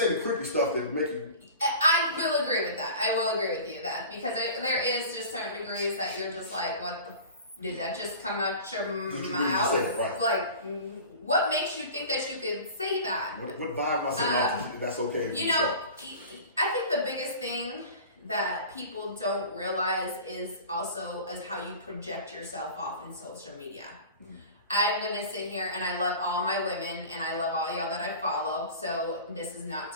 the creepy stuff that make you... I will agree with that. I will agree with you that because there is just certain degrees that you're just like, what the... Did that just come out your mouth? Say it, right. Like, what makes you think that you could say that? What vibe am I saying off? That's okay. You know, I think the biggest thing that people don't realize is also as how you project yourself off in social media. I'm gonna sit here and I love all my women and I love all y'all that I follow. So this is not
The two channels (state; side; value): inverted; both; correlation -0.39